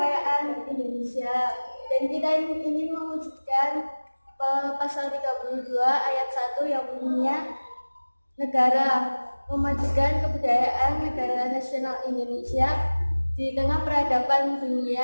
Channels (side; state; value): both; inverted; correlation -1.00